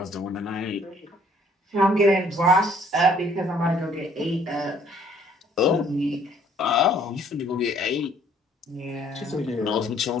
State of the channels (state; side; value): normal; both; correlation 0.61